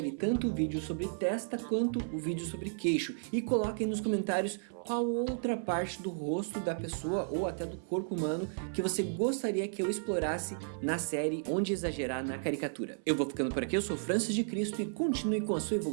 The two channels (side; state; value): left; silent; 55 dB below the other